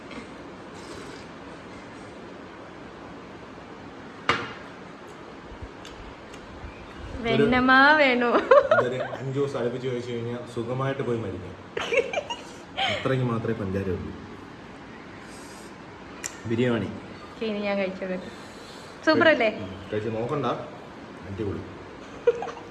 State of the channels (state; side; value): identical; both; correlation 1.00